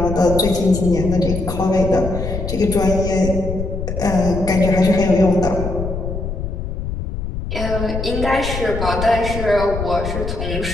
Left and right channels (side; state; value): left; noise; rumble, 5 dB below the sound